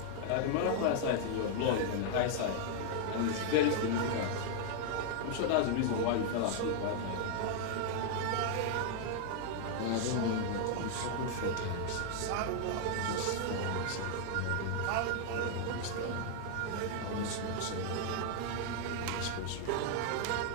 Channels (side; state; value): both; different; correlation 0.00